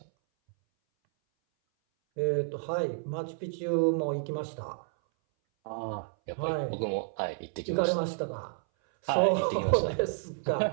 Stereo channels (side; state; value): left; silent; 57 dB below the other